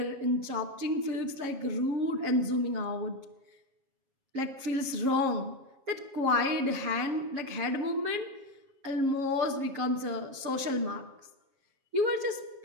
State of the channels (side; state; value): left; late; 7.3 ms